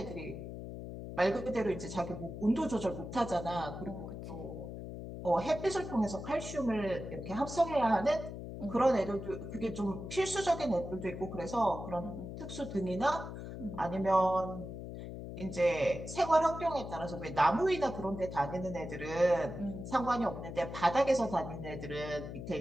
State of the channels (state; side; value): noise; left; hum, 9 dB below the sound